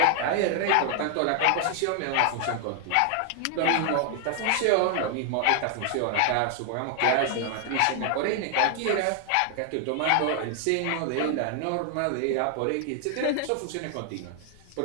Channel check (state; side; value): different; both; correlation 0.00